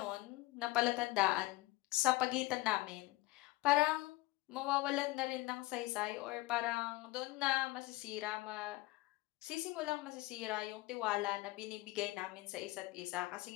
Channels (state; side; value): quieter; right; 20.4 dB